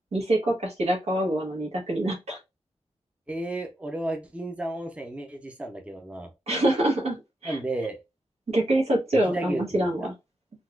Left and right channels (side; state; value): both; normal; correlation 0.83